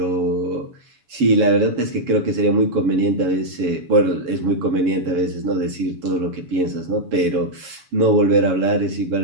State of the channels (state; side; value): late; left; 7.0 ms